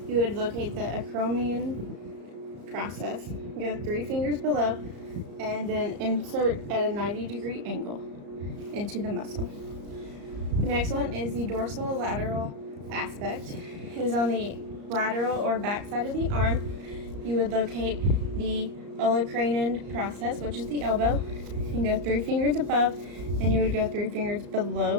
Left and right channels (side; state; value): left; late; 34 ms